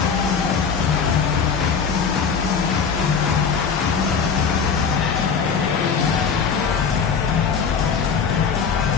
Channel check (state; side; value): quieter; right; 6.1 dB